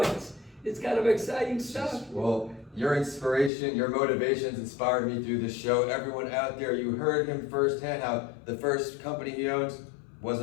kind of exciting stuff. Well, your inspiration, your motivations inspired me through this show. Everyone out there, you heard him firsthand how the first company he owns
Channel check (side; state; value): right; drops out; at 3.5 s